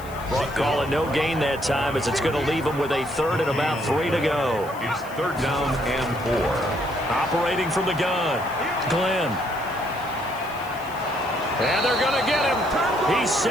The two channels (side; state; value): left; noise; hiss, 20 dB below the sound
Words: Call it no gain that time, as it's going to leave him with a 3rd and about 3 to go. It's 3rd down and 4. Operating from the gun, Glenn. And they're going to get him. He's